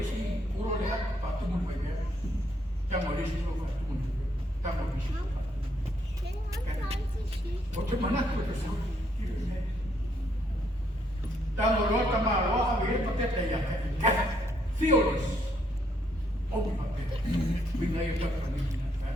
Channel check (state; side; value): normal; both; correlation 0.72